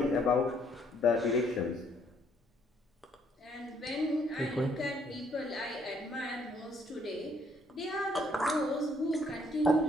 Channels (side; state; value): both; normal; correlation 0.67